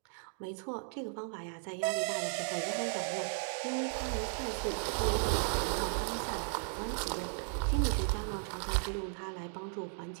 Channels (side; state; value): left; silent; 54 dB below the other